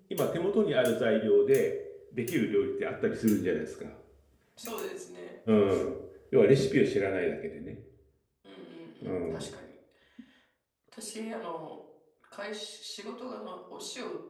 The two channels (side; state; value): both; identical; correlation 1.00